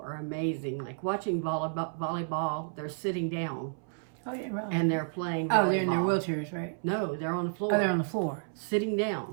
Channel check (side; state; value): left; silent; 57 dB below the other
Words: are amazing. Like watching volleyball, they're sitting down. Oh, yeah, really? And they're playing volleyball. Oh, they're in their wheelchairs, right? No, they're on the floor. Oh, they're on the floor. Sitting